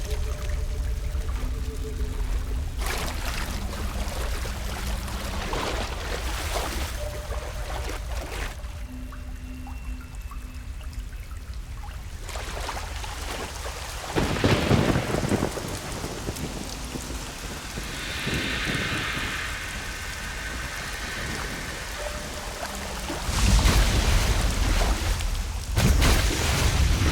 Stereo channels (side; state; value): both; identical; correlation 1.00